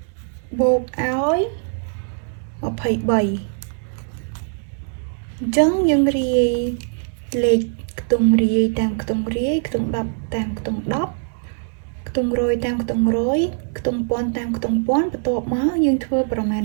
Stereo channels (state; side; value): silent; left; 60 dB below the other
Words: បូកឲ្យ23អញ្ចឹងយើងរាយលេខខ្ទង់រាយតាមខ្ទង់រាយខ្ទង់10តាមខ្ទង់10ខ្ទង់រយតាមខ្ទង់រយខ្ទង់ពាន់តាមខ្ទង់ពាន់បន្ទាប់មកយើងធ្វើប្រមាណ